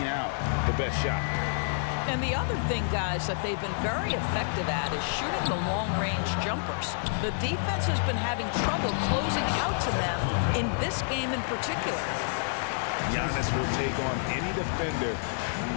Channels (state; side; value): silent; right; digital silence